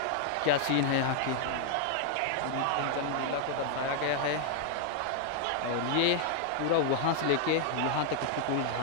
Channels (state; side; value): different; both; correlation 0.00